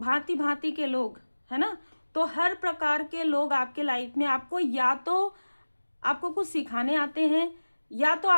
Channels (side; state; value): both; inverted; correlation -1.00